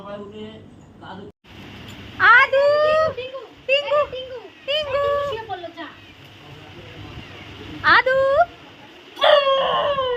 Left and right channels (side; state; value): both; identical; correlation 1.00